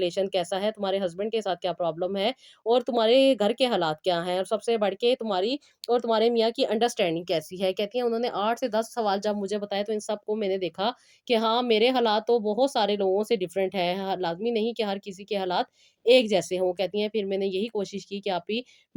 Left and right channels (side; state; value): both; identical; correlation 1.00